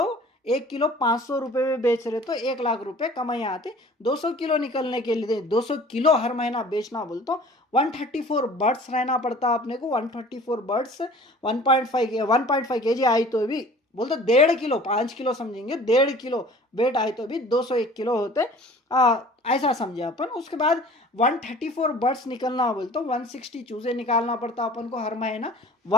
1 किलो 500 रुपए में बेच रहे तो 1 लाख रुपए कमाई आते। 200 किलो निकलने के लिए 200 किलो हर महीना बेचना बोल तो 134 बर्ड्स रहना पड़ता अपने को। 134 बर्ड्स 1.5 केजी आई तो भी बोल तो 1.5 किलो 5 किलो समझेंगे, 1.5 किलो वेट आए तो भी 201 किलो होते, ऐसा समझे अपन। उसके बाद 134 बर्ड्स निकलना बोल तो 160 चूजे निकालना पड़ता अपन को हर महीना।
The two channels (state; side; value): normal; both; correlation 0.47